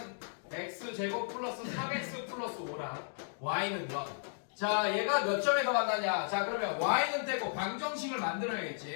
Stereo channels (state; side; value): silent; right; digital silence